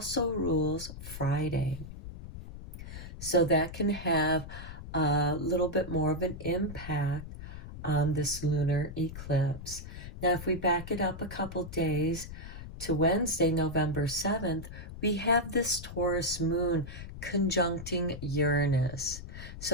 rules Friday. So that can have a little bit more of an impact on this lunar eclipse. Now, if we back it up a couple days to Wednesday, November 7th, we have this Taurus moon conjuncting Uranus.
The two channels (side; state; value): left; noise; rumble, 11 dB below the sound